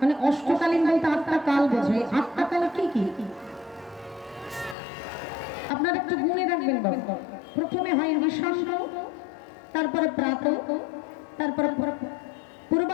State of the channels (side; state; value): right; drops out; at 4.8 s